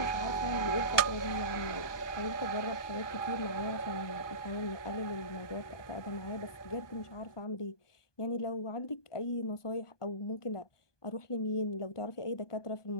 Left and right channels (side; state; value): right; late; 1.2 ms